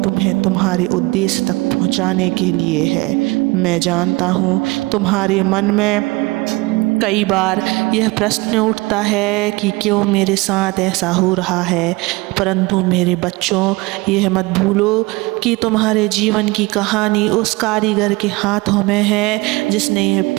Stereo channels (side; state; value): left; quieter; 23.2 dB